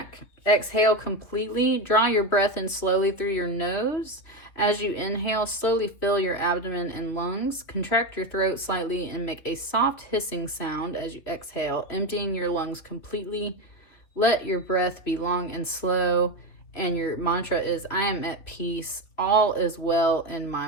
Exhale completely. Draw your breath in slowly through your nose. As you inhale, slowly fill your abdomen and lungs. Contract your throat slightly and make a soft hissing sound as you exhale, emptying your lungs completely. Let your breath be long and slow. And your mantra is, I am at peace. All is well in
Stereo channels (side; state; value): right; late; 3.4 ms